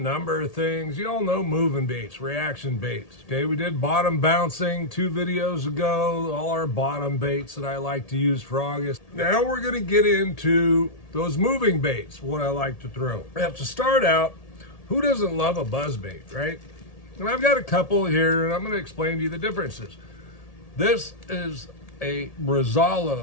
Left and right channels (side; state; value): right; late; 1.8 ms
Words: of things. You all know moving baits, reaction baits. Okay, we did bottom bouncing 2 videos ago, all our bottom baits that I like to use for August. Now we're going to get into those moving baits, what I like to throw. We have to start out, who doesn't love a buzz bait, right? And I've got a couple here, and I'm going to explain to you the differences. This is a